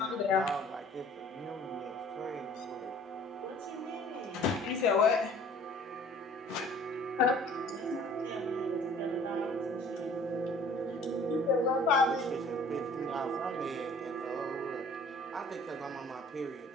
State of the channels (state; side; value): normal; both; correlation 0.51